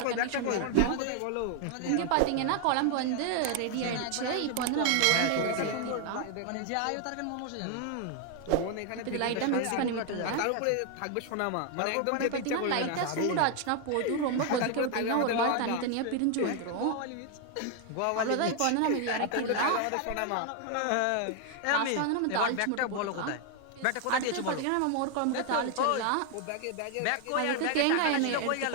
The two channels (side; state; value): both; different; correlation 0.00